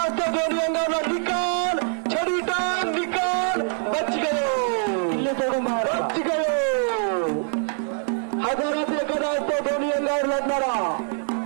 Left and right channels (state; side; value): silent; left; 63 dB below the other